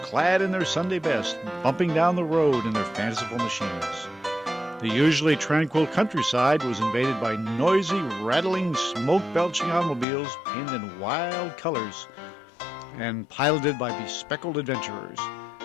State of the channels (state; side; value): drops out; right; at 10.1 s